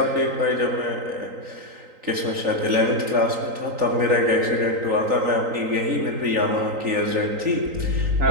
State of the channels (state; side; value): late; left; 3.9 ms